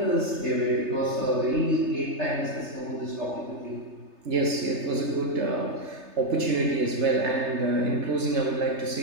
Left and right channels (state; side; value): late; left; 3.3 ms